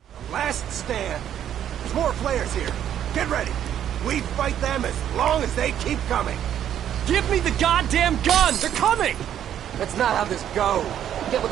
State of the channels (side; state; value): left; quieter; 10.3 dB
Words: Last stand. There's more players here. Get ready. We fight them as long as they keep coming. Give me the goddamn gun! They're coming! That's not how this goes. Get with